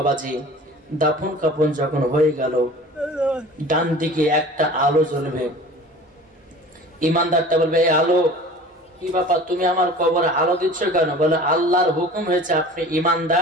দাফন কাফন যখন হয়ে গেল, ডান দিকে একটা আলো জ্বলবে, ইমানদারটা বলবে এই আলো কি ব্যাপার, তুমি আমার কবরে আলো দিচ্ছ কেন? বলে আল্লাহর হুকুম হয়েছে আপনি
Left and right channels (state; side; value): normal; both; correlation 0.42